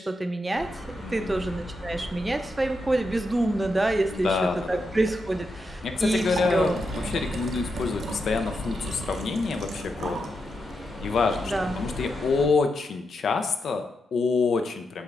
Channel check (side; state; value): both; normal; correlation 0.85